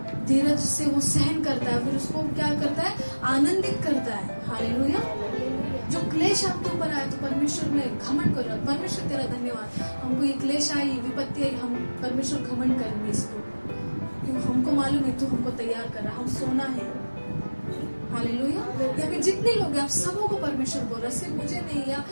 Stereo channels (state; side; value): inverted; both; correlation -1.00